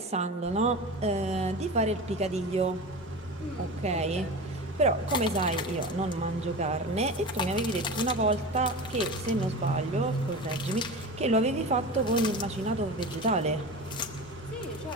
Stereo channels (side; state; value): both; normal; correlation 0.29